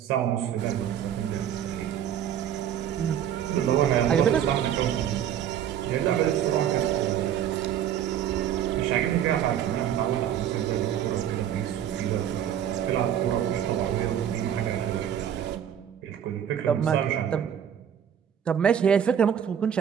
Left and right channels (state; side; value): quieter; left; 9.6 dB